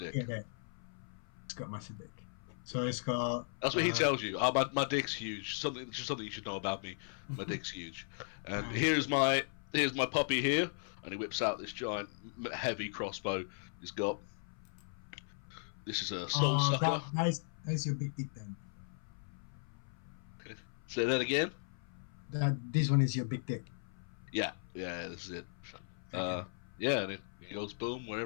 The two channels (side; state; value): right; silent; 53 dB below the other